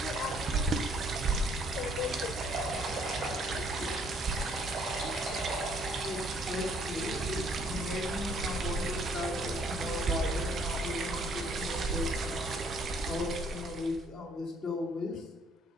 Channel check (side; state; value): both; normal; correlation 0.64